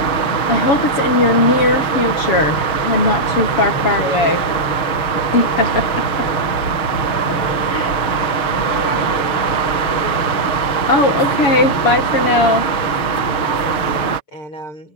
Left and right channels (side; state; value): right; late; 6.4 ms